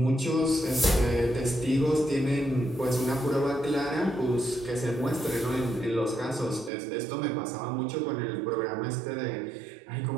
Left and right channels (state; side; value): drops out; left; at 6.7 s